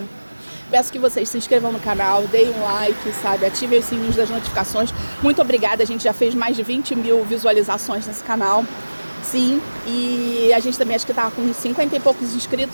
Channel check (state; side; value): inverted; both; correlation -1.00